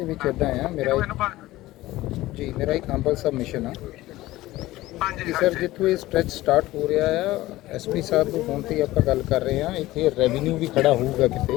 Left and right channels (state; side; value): quieter; right; 17.2 dB